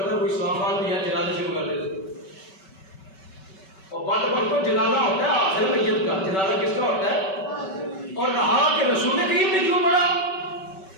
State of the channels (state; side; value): late; right; 5.2 ms